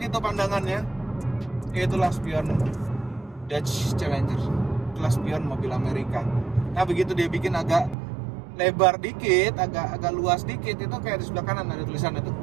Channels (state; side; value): drops out; left; at 8.0 s